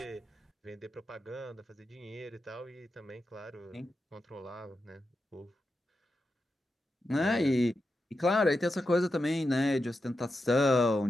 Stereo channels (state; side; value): normal; both; correlation 0.89